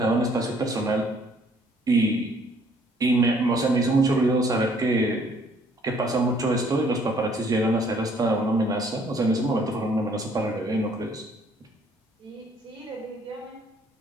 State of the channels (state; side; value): normal; both; correlation 0.62